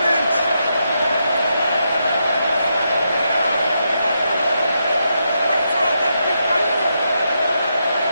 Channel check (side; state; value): both; inverted; correlation -0.82